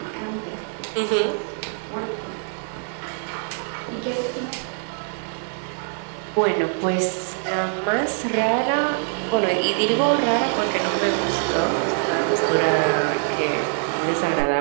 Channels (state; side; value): silent; left; 57 dB below the other